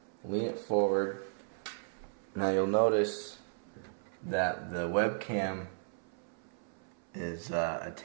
lean it forward. Now you'll notice that the webcam is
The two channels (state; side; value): silent; left; 54 dB below the other